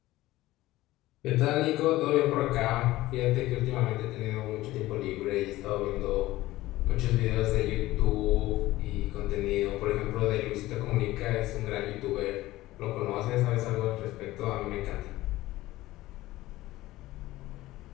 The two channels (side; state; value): right; quieter; 17.1 dB